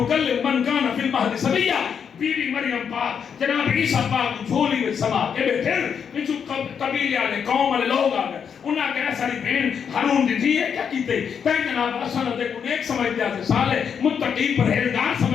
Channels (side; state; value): right; quieter; 7.2 dB